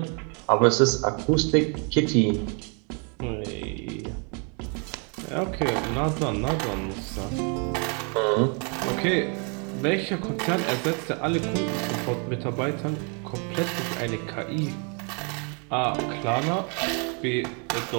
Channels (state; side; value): quieter; left; 36.9 dB